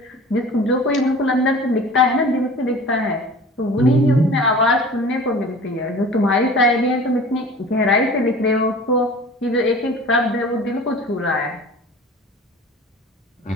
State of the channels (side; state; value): both; normal; correlation 0.41